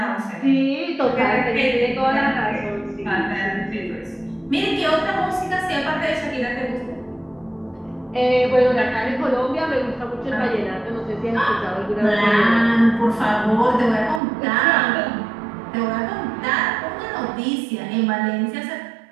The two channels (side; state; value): left; drops out; at 14.2 s